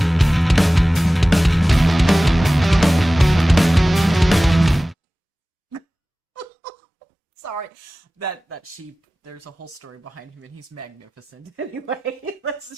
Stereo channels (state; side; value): normal; both; correlation 0.97